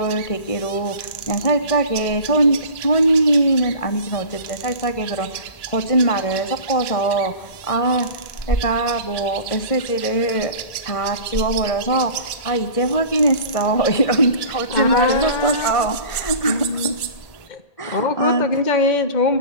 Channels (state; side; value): late; right; 1.8 ms